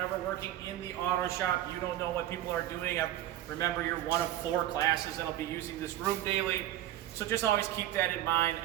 working in the auto shop, you don't know what people are doing. Remember, you're one of 4 classes that'll be using this room daily. So just always keep that in mind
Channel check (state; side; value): quieter; left; 13.3 dB